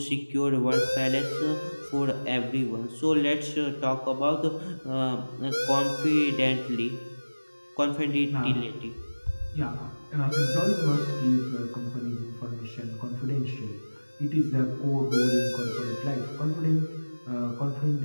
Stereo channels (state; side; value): inverted; both; correlation -1.00